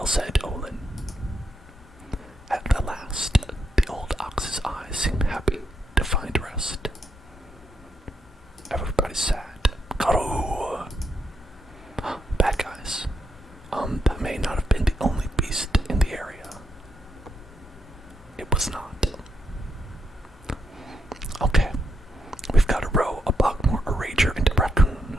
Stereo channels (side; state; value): both; normal; correlation 0.80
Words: said, Olin. At the last, the old ox's eyes seemed happy to find rest. Everybody's sad. Karoo! Bad guys. That may not have been the only beast in the area. It was not. Okay. We've got a row, a Bogmore, a Rager, and a Raccoon.